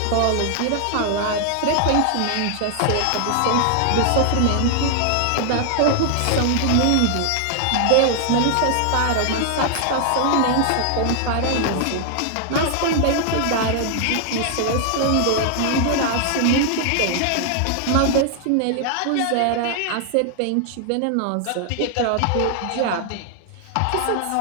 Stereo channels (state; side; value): different; both; correlation 0.00